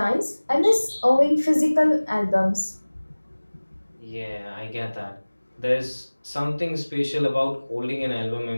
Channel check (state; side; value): inverted; both; correlation -1.00